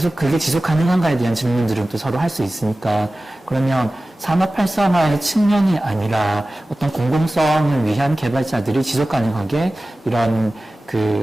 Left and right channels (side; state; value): both; normal; correlation 0.96